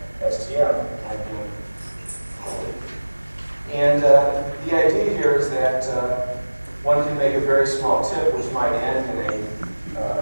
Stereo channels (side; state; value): both; inverted; correlation -1.00